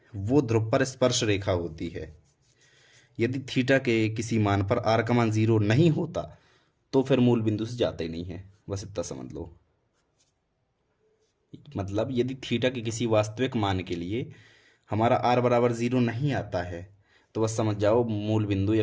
वो ध्रुव पर स्पर्श रेखा होती है। यदि थीटा के किसी मान पर आर का मान 0 नहीं होता तो फिर मूल बिंदु से जाते ही नहीं है। बस इतना समझ लो। मतलब यदि थीटा के किसी वास्तविक मान के लिए हमारा आर बराबर 0 नहीं आता है तो बस समझ जाओ मूल बिंदु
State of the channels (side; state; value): both; identical; correlation 1.00